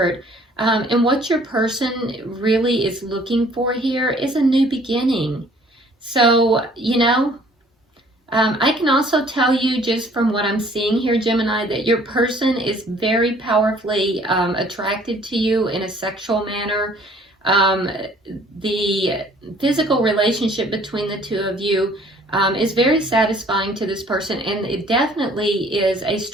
And what your person really is looking for here is a new beginning. So, you know, I can also tell you just from what I'm seeing here, Gemini, that your person is very powerfully attracted to you in a sexual manner. The physical relationship between the two of you is very satisfying to this person, and it definitely is a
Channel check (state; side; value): normal; both; correlation 0.56